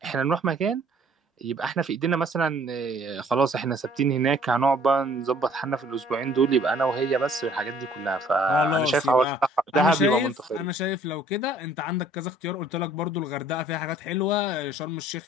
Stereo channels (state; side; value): normal; both; correlation 0.57